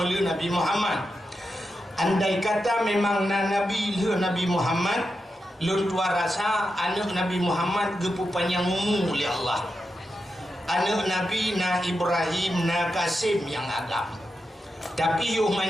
Nabi Muhammad. Andai kata memang nabi le Nabi Muhammad lun tua rasa anak Nabi Muhammad gepu panjang umur oleh Allah. Anak Nabi na Ibrahim na Kasim yang agam. Tapi yuh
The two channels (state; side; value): normal; both; correlation 0.88